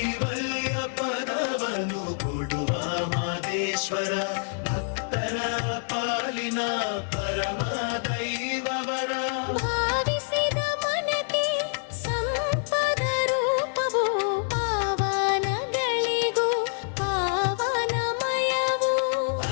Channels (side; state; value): right; silent; digital silence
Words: ಪದವನ್ನು ಕೊಡುವ ಮಾದೇಶ್ವರ ಭಕ್ತರ ಪಾಲಿನ ಪರಮ ದೈವವರ. ಭಾವಿಸಿದ ಮನಕ್ಕೆ ಸಂಪದ ರೂಪವು ಪಾವನಗಳಿಗೂ ಪಾವನಮಯವು.